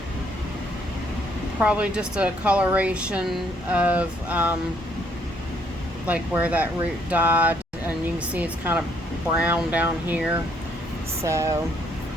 probably just a coloration of like where that root died, and you can see it's kind of brown down here. So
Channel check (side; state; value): both; normal; correlation 0.68